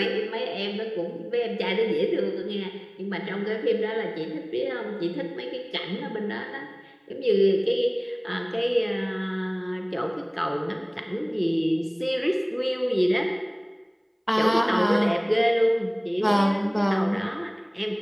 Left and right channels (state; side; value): identical; both; correlation 1.00